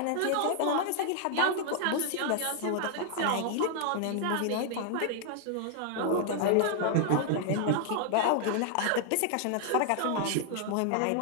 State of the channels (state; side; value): different; both; correlation 0.00